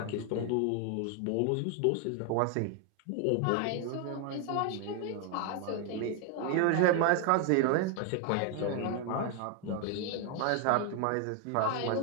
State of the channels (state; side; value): different; both; correlation 0.01